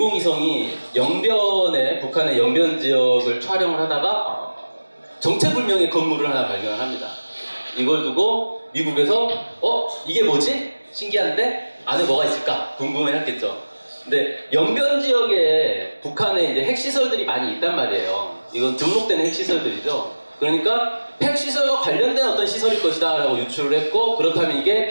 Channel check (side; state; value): both; inverted; correlation -1.00